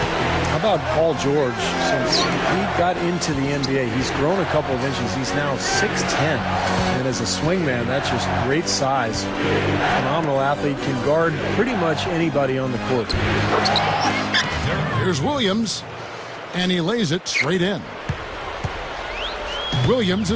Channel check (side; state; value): both; identical; correlation 1.00